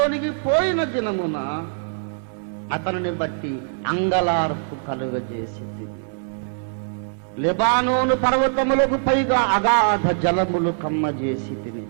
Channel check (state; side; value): silent; left; digital silence